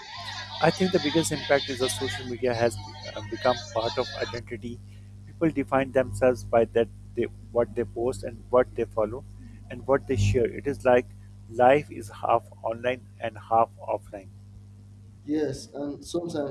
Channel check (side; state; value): both; identical; correlation 1.00